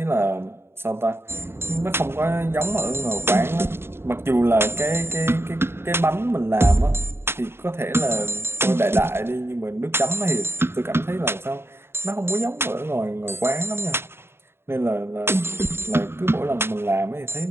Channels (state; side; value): late; left; 0.11 ms